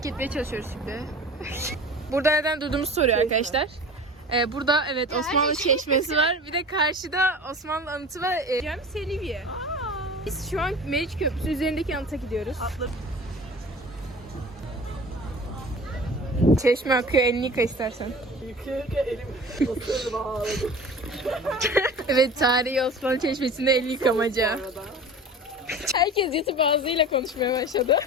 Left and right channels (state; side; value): normal; both; correlation 0.39